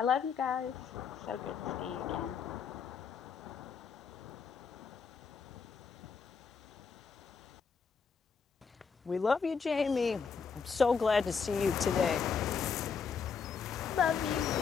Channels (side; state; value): right; quieter; 5.8 dB